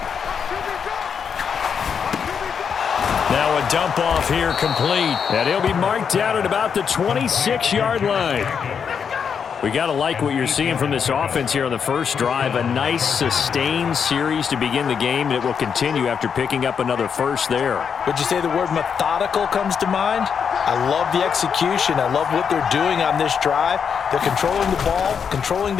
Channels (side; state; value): right; quieter; 6.9 dB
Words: Now a dump off here complete. And he'll be marked down at about the 26-yard line. We got to like what you're seeing from this offense here on the first drive. A nice sustained series to begin the game, and it will continue after picking up another first there. Would you say the word methodical comes to mind? I love the execution. I love what they're doing on this drive. They're controlling the ball, controlling